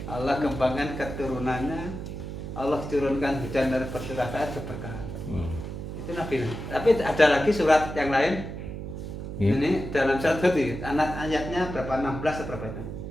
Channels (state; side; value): noise; right; hum, 8 dB below the sound